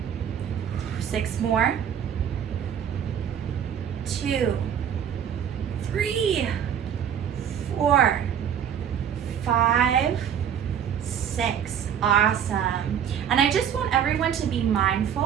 6 more. 2, 3, 4, 5, 6. Awesome. And I just want everyone to be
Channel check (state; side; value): quieter; left; 8.7 dB